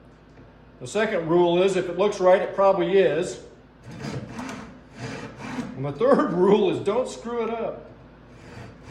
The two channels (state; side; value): identical; both; correlation 1.00